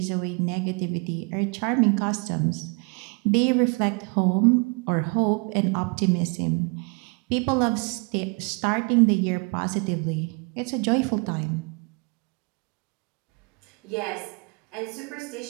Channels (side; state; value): left; quieter; 33.1 dB